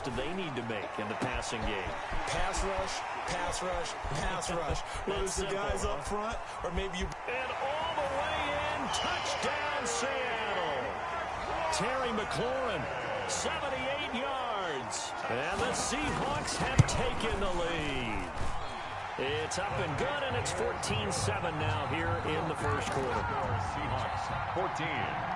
they need to make in the passing game? Pass rush, pass rush, pass rush. Whether it's the guys up front or maybe you... And all the way in, touchdown Seattle. Terry McLaurin, 78 yards. And the Seahawks have taken the lead. It's up and good, and it's 14-7 now here in the first quarter. Seahawks 14,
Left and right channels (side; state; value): both; identical; correlation 1.00